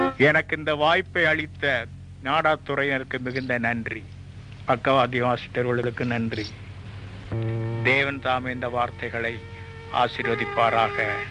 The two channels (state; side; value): identical; both; correlation 1.00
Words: எனக்கு இந்த வாய்ப்பை அளித்த நாடாத்துறையினருக்கு மிகுந்த நன்றி. பக்கவாதி ஆசிரியர்களுக்கு நன்றி. தேவன் தாமே இந்த வார்த்தைகளை ஆசீர்வதிப்பாராக.